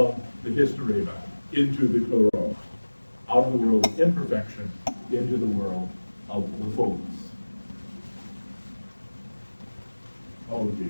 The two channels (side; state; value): both; inverted; correlation -1.00